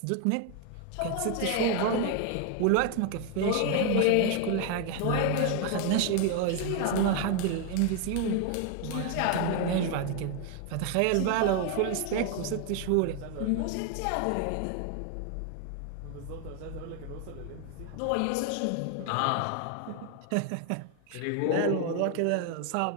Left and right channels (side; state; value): both; different; correlation 0.01